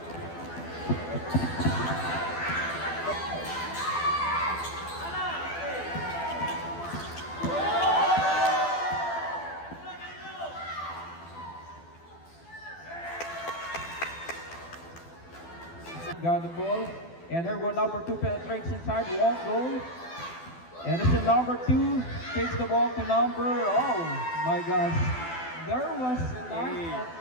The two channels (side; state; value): right; late; 12 ms